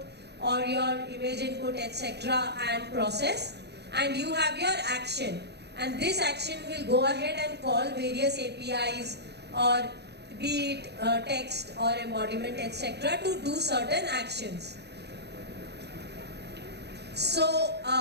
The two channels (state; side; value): late; left; 0.49 ms